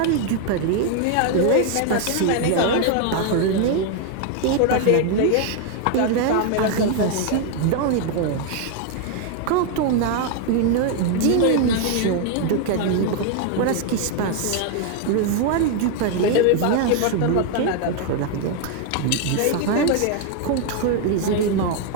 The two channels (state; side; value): different; both; correlation 0.00